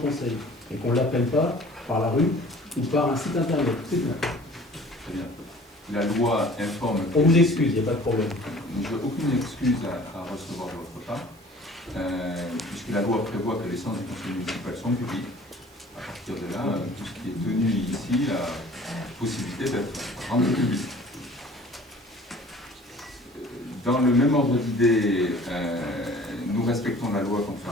et qu'on ne l'apprenne pas par la rue ou par un site internet. C'est tout. Très bien. La loi informe... On vous excuse, il n'y a pas de problème. Je n'ai aucune excuse à recevoir de votre part, puisque la loi prévoit que les séances du conseil municipal sont publiques. À partir de là, tout ce qui est tenu ici a la possibilité d'être rendu public. Dans le même ordre d'idée, nous respectons la loi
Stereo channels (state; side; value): normal; both; correlation 0.49